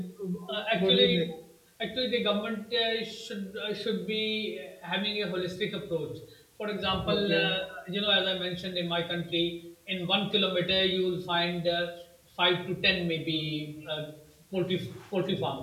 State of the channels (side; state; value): both; identical; correlation 1.00